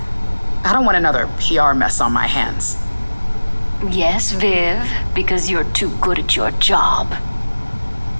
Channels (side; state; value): both; inverted; correlation -1.00